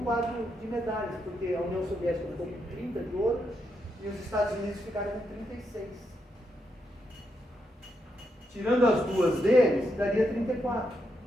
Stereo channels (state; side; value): normal; both; correlation 0.82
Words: de medalhas, porque a União Soviética ficou com 30 de ouro e os Estados Unidos ficaram com 36. Tirando as duas deles, daria 34.